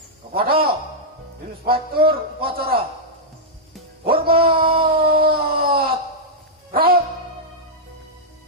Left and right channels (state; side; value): normal; both; correlation -0.07